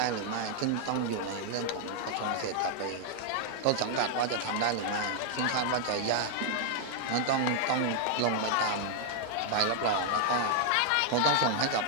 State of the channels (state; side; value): different; both; correlation 0.00